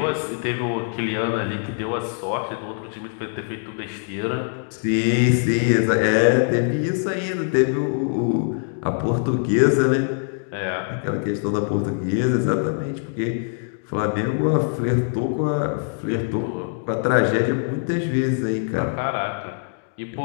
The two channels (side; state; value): right; silent; digital silence